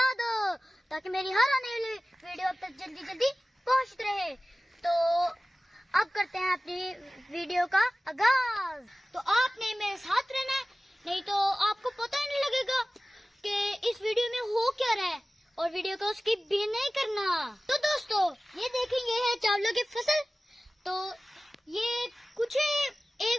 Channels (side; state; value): both; normal; correlation 0.97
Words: दो ताकि मेरी हर आने वाली वीडियो अब तक जल्दी जल्दी पहुंचती रहे। तो अब करते हैं अपनी वीडियो का आगाज। तो आपने मेरे साथ रहना है, नहीं तो आपको पता ही नहीं लगेगा कि इस वीडियो में हो क्या रहा है और वीडियो को स्किप भी नहीं करना। तो दोस्तों, ये देखेंगे है चावलों की फसल। तो ये कुछ